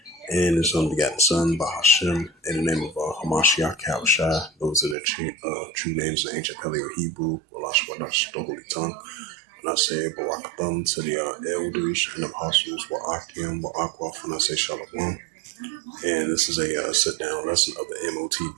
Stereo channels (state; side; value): drops out; left; at 5.0 s